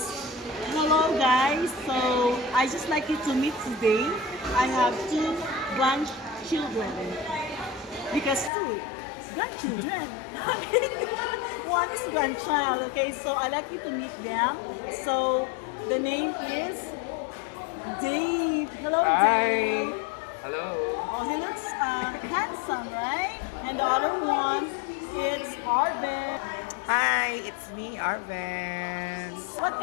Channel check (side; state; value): right; drops out; at 8.5 s